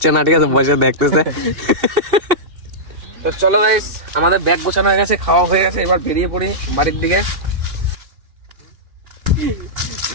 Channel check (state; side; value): late; left; 2.6 ms